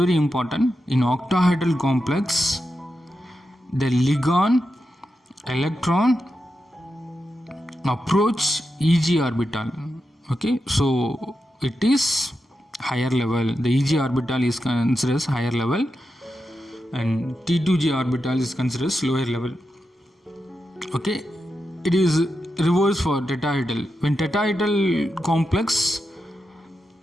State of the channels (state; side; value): normal; both; correlation 0.88